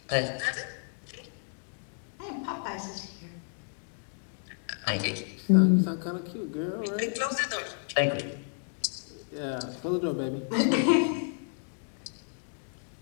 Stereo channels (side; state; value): right; silent; 57 dB below the other